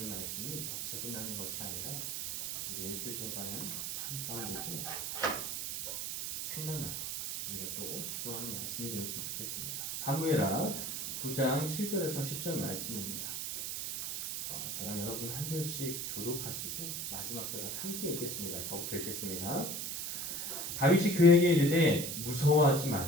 말씀이 여기서 끝나는 것이 아니라 우리 일주일 동안은 삶 가운데도 생각나고 우리가 또 적용하는 말씀이 되었으면 좋겠습니다. 사무엘하 9장 7절에서 10절 말씀입니다. 저랑 여러분 한 절씩 교독하시고 마지막 절을 함께 읽겠습니다. 저부터 읽겠습니다. 다윗이 그에게 이르되 무서워하지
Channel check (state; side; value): noise; right; hiss, 3 dB below the sound